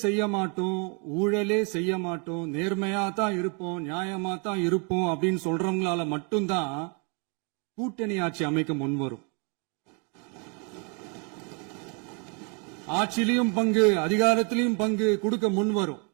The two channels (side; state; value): left; quieter; 35.7 dB